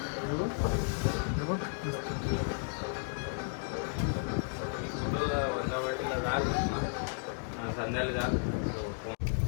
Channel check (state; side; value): silent; right; 55 dB below the other